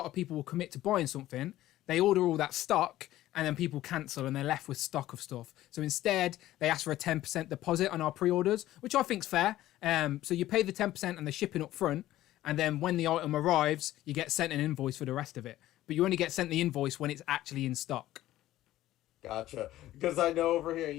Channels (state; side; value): quieter; right; 14.7 dB